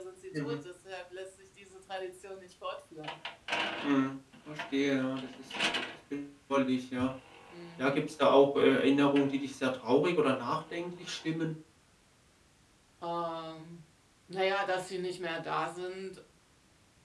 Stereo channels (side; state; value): both; identical; correlation 1.00